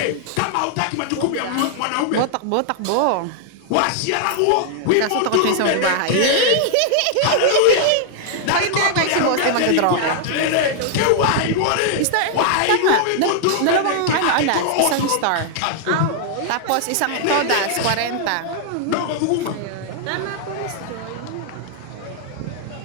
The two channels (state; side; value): different; both; correlation 0.00